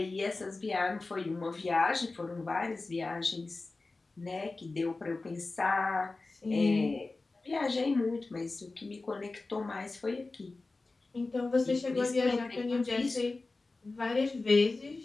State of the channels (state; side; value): quieter; right; 3.5 dB